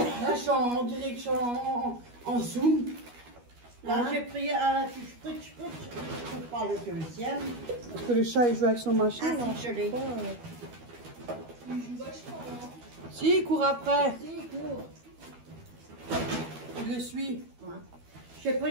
je suis en direction en zoom. Là, Hein? j'ai pris un spritz, pour pas le deuxième. Parce que le chat il joue avec son machin. Ah, là. si, je l'ai. Il joue vachement, hein. Si, il court après. Si, cours. Il le suit. Ouais. J'ai pris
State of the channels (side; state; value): left; late; 12 ms